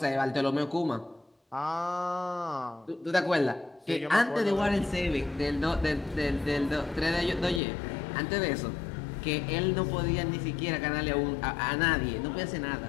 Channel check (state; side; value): drops out; right; at 7.6 s